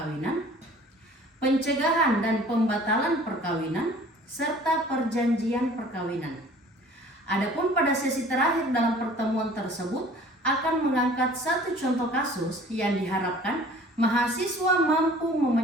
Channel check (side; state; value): both; normal; correlation 0.49